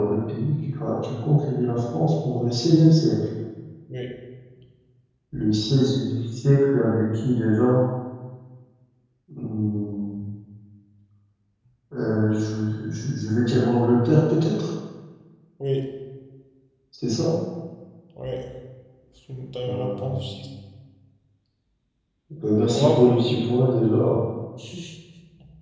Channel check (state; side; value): identical; both; correlation 1.00